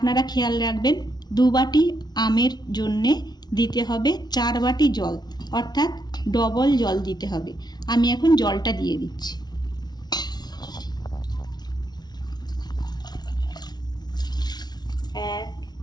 খেয়াল রাখবেন, 2 বাটি আমের জন্যে দিতে হবে 4 বাটি জল, অর্থাৎ ডবল জল দিতে হবে। আমি এখন জলটা দিয়ে দিচ্ছি। 1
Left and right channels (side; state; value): right; late; 0.20 ms